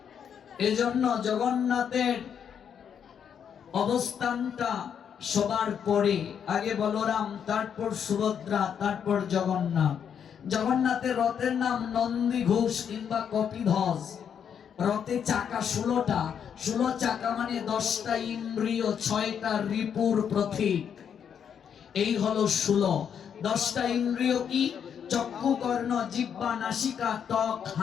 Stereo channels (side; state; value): right; quieter; 7.9 dB